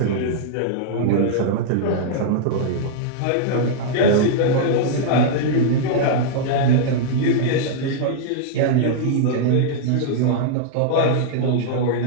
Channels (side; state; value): both; different; correlation -0.01